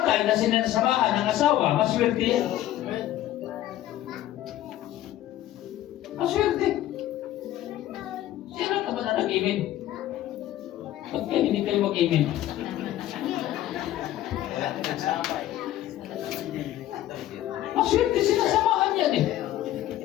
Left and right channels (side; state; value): right; quieter; 13.4 dB